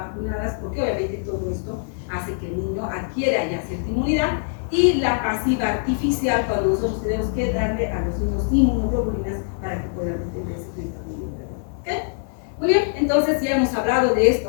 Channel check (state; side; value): silent; right; 63 dB below the other